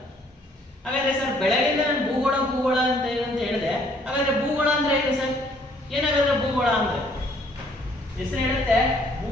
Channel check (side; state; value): both; normal; correlation 0.63